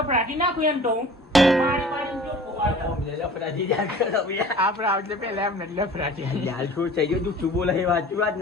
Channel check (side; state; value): both; normal; correlation 0.45